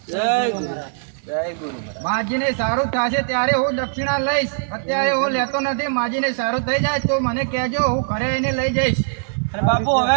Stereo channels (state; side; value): silent; left; digital silence